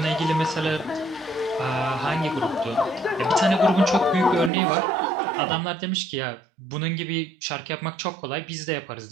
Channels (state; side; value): drops out; left; at 4.5 s